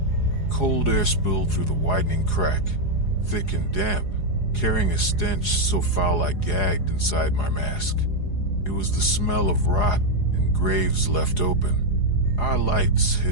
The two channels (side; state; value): right; late; 4.8 ms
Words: Cold air spilled through the widening crack, thick and damp, carrying a stench so foul I gagged inside my mask. It was the smell of rot and graves left open. Our lights